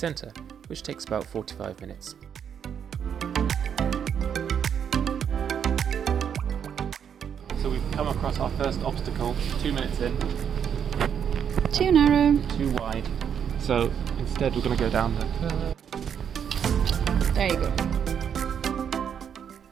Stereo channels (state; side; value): quieter; left; 8.1 dB